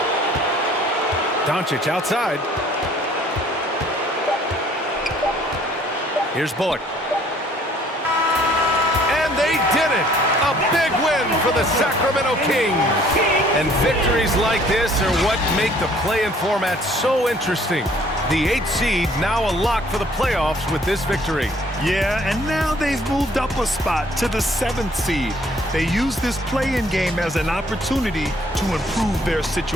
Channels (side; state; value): both; normal; correlation 0.59